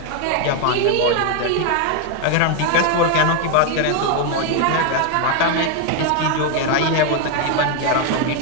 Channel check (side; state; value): both; different; correlation 0.01